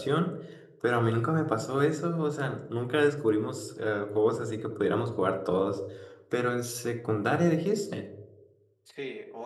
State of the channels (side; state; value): both; identical; correlation 1.00